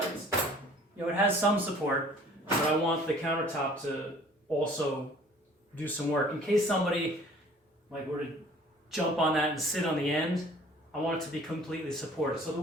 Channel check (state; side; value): normal; both; correlation 0.52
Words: it has some support. But I want the countertop to also do some work in case somebody were to jump on that and sit on the end. I want it to be completely supported. So the